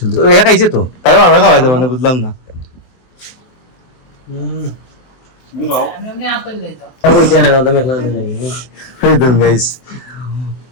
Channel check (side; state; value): right; late; 23 ms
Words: একা খাইছে তো, তার বাবা খাওয়াই দেবো না, বুঝলাম না। গাইস